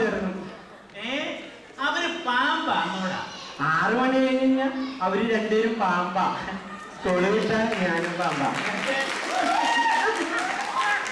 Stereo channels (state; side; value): identical; both; correlation 1.00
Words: അവര് പാമ്പാന്നോടാ. 6 മണി കഴിഞ്ഞാ അവര് രണ്ടുപേരും പാമ്പാ. തൊളി വിട്ടാ ഞാനും പാമ്പാ.